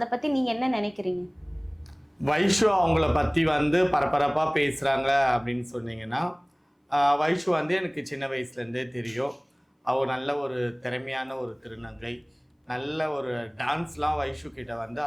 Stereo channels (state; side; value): identical; both; correlation 1.00